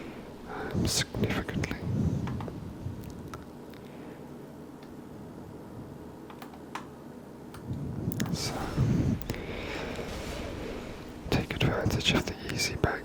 significantly. So, take advantage of the easy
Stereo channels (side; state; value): both; identical; correlation 1.00